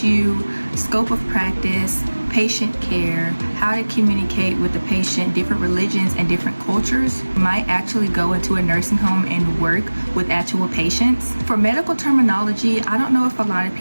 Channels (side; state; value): both; inverted; correlation -1.00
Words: you scope of practice, patient care, how to communicate with the patient, different religions and different cultures. You might actually go into a nursing home and work with actual patients. For medical terminology, I don't know if a lot of